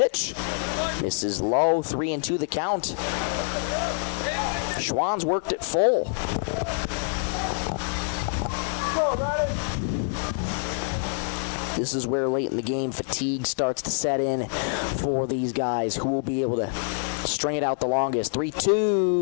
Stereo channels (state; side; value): silent; right; digital silence